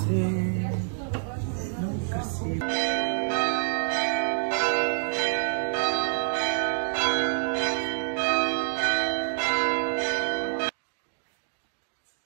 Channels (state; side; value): silent; left; digital silence